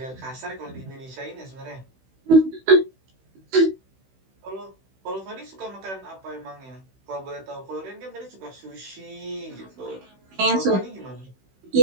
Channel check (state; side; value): late; left; 16 ms